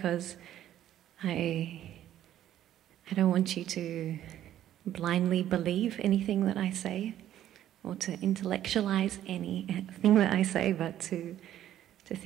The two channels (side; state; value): left; quieter; 11.9 dB